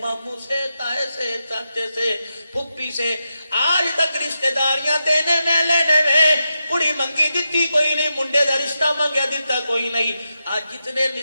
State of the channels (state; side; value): inverted; both; correlation -0.88